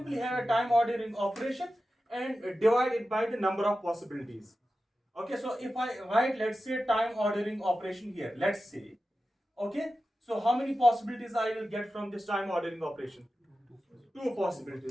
have a time ordering operation and divide it by the number of possibilities. Okay, so if I write, let's say, time ordering operation here, let's say, okay, so how many possibilities I will get from this time ordering operation? 2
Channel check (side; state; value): both; normal; correlation 0.93